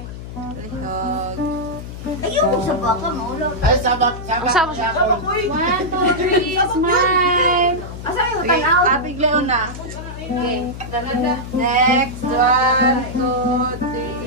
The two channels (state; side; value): noise; left; hum, 11 dB below the sound